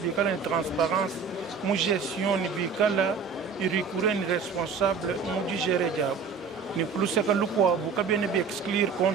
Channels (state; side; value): quieter; left; 5.5 dB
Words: bikala une transparence mu gestion ni bikala irikure ni responsable mu digere jao ni plus que lukwa bukabene bi exclure